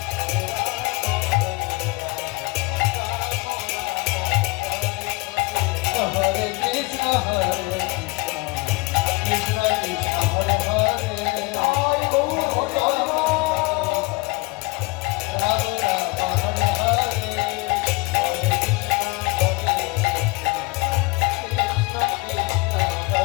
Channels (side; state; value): right; quieter; 25.5 dB